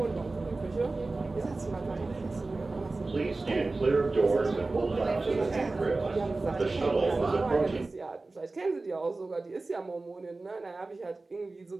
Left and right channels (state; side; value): quieter; left; 3.4 dB